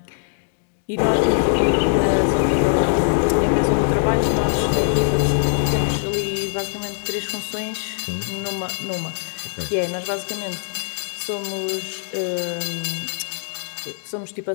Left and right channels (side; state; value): right; silent; digital silence